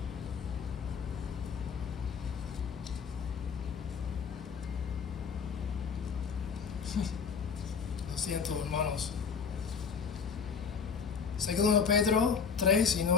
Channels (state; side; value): quieter; right; 6.3 dB